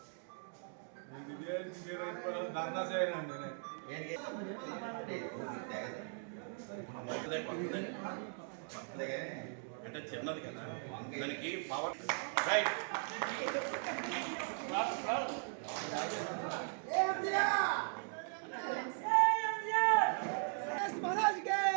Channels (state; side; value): silent; left; 52 dB below the other